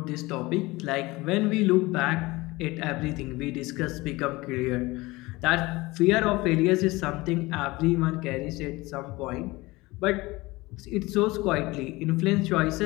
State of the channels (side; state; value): right; quieter; 21.4 dB